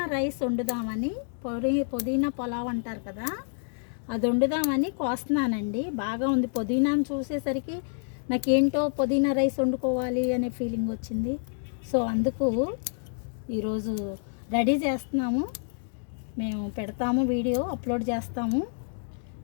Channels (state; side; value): silent; right; digital silence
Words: రైస్ వండుదామని, పుదీనా పులావ్ అంటారు కదా, అది వండుదామని కోస్తున్నానండి. బాగా ఉంది. పుదీనాను చూసేసరికి నాకేంటో పుదీనా రైస్ వండుకోవాలి అనే ఫీలింగ్ వచ్చింది. సో అందుకు ఈరోజు రెడీ చేస్తున్నాము. మేము పెడతాము, వీడియో అప్లోడ్ చేస్తాము.